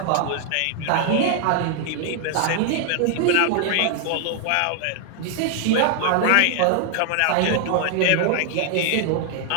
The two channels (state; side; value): different; both; correlation 0.00